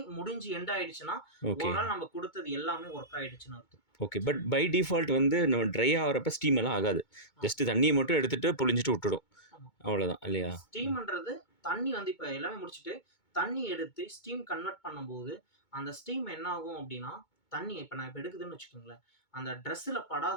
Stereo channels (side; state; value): right; late; 2.2 ms